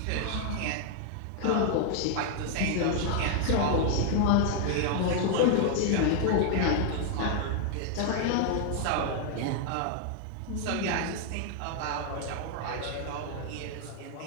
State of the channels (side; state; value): both; different; correlation 0.00